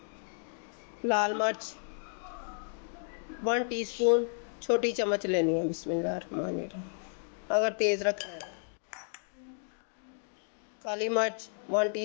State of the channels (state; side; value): silent; right; digital silence